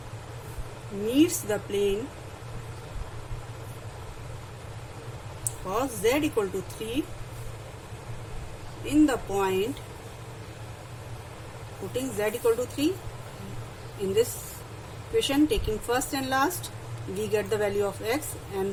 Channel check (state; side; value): identical; both; correlation 1.00